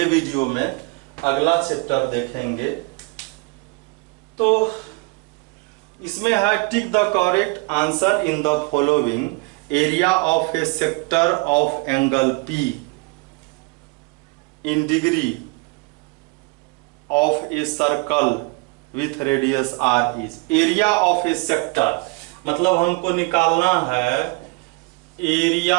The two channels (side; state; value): left; quieter; 27.9 dB